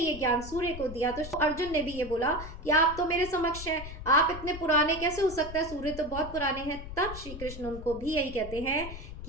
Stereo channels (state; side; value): noise; left; rumble, 11 dB below the sound